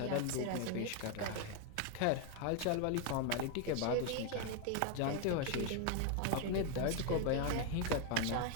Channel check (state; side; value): different; both; correlation 0.01